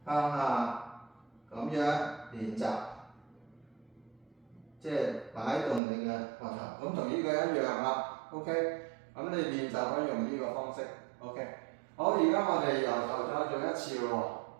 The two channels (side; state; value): left; drops out; at 5.8 s